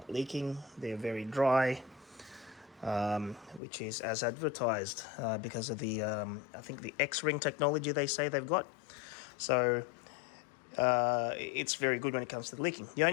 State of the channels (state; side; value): drops out; right; at 3.6 s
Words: leaking. They're very dry, which is as advertised because of the, I think the X-ring technology they say they've got. So it's very good when it comes to the leaking. The